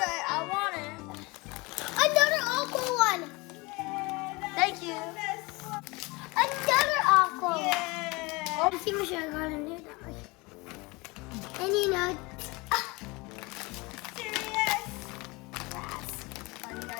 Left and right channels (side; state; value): right; quieter; 24.9 dB